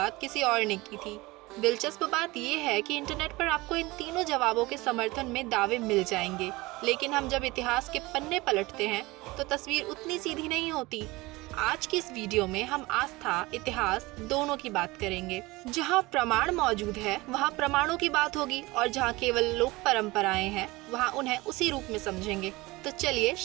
किसी और ने की थी? दिलचस्प बात यह है कि इंटरनेट पर आपको इन तीनों जवाबों के समर्थन में दावे मिल जाएंगे, लेकिन हम जब इतिहास के पन्ने पलटते हैं तो तस्वीर उतनी सीधी नहीं होती। आज की इस वीडियो में हम आस्था, इतिहास दोनों की बात करेंगे। जहां प्रमाण मौजूद है वहां प्रमाणों की बात होगी, और जहां केवल लोक परंपराएं हैं वहां उन्हें उसी रूप में समझेंगे। तो चलिए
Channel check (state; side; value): quieter; left; 21.6 dB